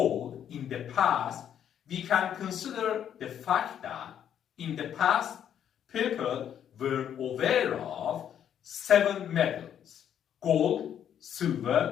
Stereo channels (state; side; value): quieter; right; 9.4 dB